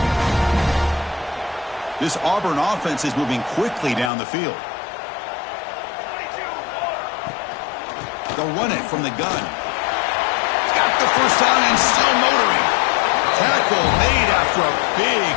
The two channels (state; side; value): drops out; right; at 4.1 s